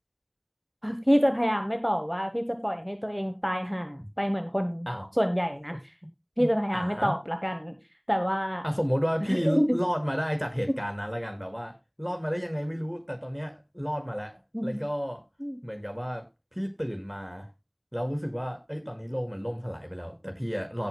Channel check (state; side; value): identical; both; correlation 1.00